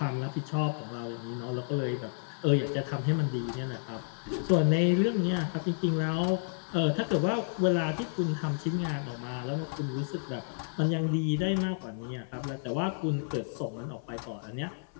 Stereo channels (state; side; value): silent; right; 57 dB below the other